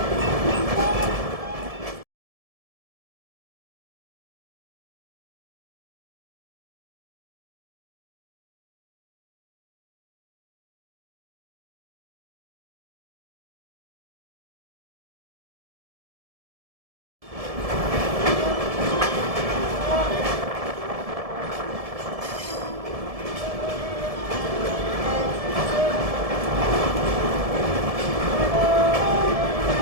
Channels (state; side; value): late; left; 1.7 ms